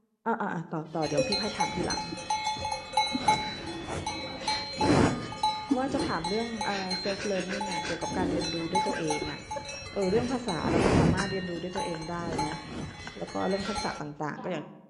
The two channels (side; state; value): both; identical; correlation 1.00